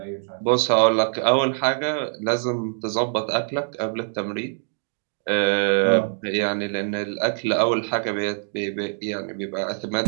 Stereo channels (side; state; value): left; silent; digital silence